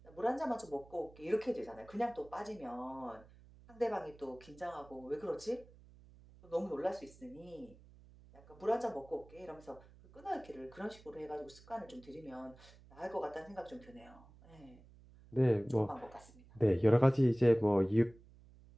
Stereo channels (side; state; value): right; noise; hum, 23 dB below the sound